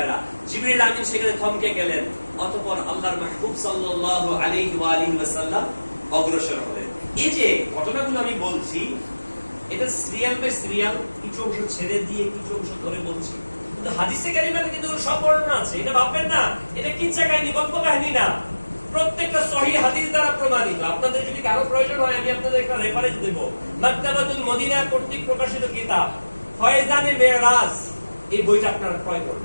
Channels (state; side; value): inverted; both; correlation -1.00